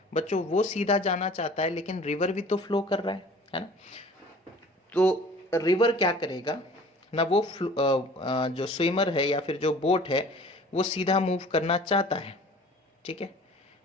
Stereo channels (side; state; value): both; normal; correlation 0.47